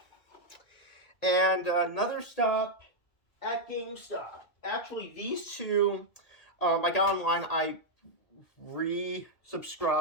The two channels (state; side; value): late; right; 1.8 ms